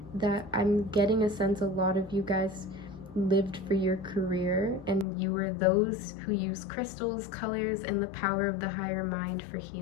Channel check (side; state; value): right; drops out; at 5.1 s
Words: that I'm getting a sense a lot of you guys lived for your career, and you were those who use crystals, colors, and the power of the higher mind for